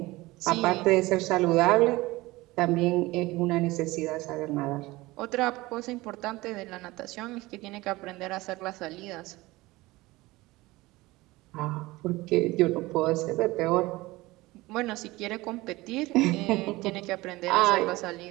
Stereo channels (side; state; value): left; quieter; 20.2 dB